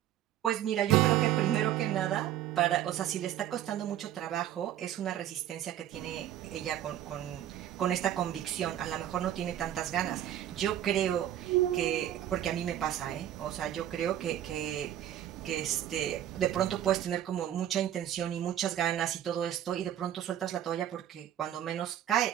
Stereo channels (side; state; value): left; quieter; 11.6 dB